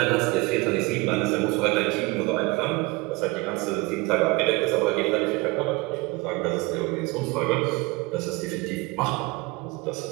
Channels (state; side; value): quieter; left; 24.3 dB